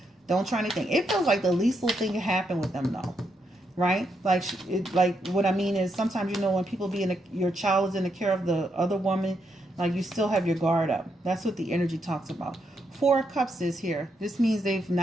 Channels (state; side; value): normal; both; correlation 0.80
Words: don't try anything. It feels like the least little thing can happen with them, though. Right? Like, what I mean is sometimes, when people your child is in the care of the other woman, like, you still have your guard up. That's what the energy talks about. Four of Cups is here. This means